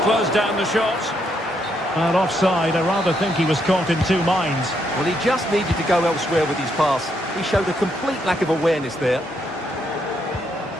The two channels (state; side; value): normal; both; correlation 0.76